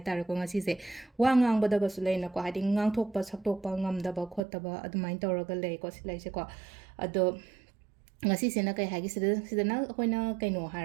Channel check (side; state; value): left; drops out; at 4.4 s